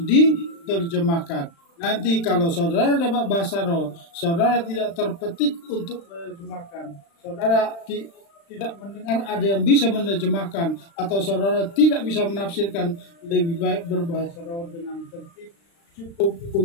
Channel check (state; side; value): late; right; 36 ms